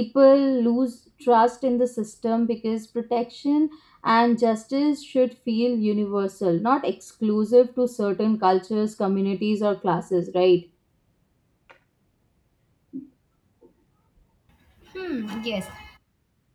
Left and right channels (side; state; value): both; identical; correlation 1.00